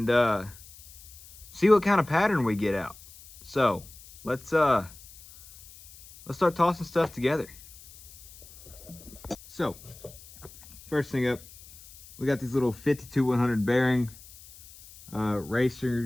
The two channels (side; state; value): left; noise; hiss, 20 dB below the sound